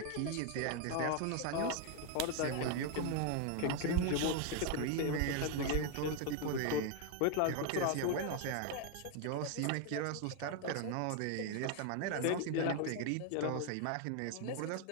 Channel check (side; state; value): both; different; correlation 0.01